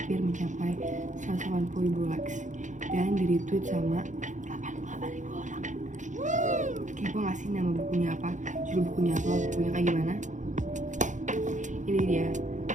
mencapai 180.000 likes dan di retweet sama 88.000 orang. Kepo gak sih nama bukunya apa? Judul bukunya apa? Bukunya kayak gimana? Ini dia,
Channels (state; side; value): late; left; 0.36 ms